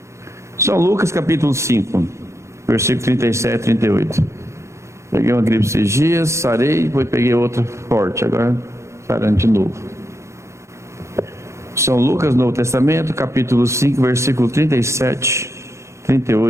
São Lucas capítulo 5, versículo 37 e 38. Peguei uma gripe esses dias, sarei, depois peguei outra forte, agora sarando de novo. São Lucas, Novo Testamento, capítulo 5, versículo 37,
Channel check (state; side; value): late; left; 0.14 ms